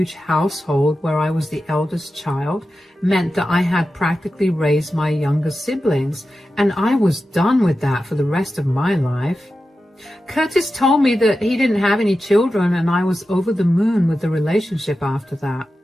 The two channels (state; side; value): normal; both; correlation 0.92